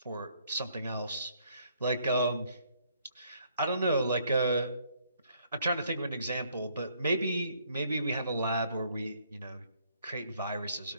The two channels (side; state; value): both; inverted; correlation -0.67